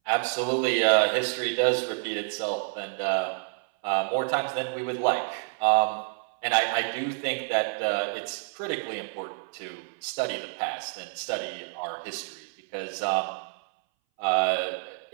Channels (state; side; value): silent; left; 59 dB below the other